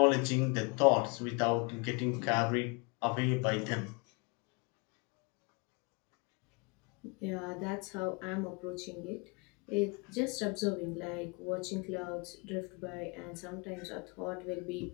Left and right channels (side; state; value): right; quieter; 29.9 dB